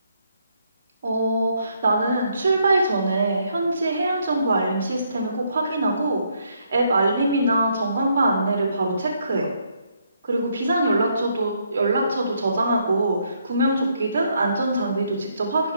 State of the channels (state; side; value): inverted; both; correlation -0.73